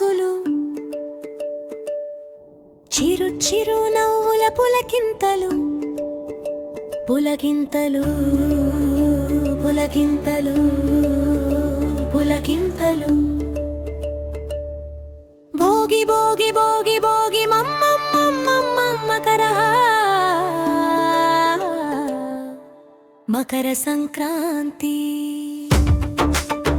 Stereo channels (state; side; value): identical; both; correlation 1.00